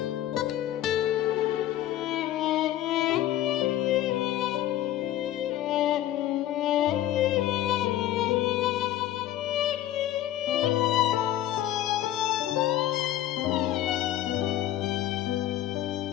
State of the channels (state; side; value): quieter; right; 13.1 dB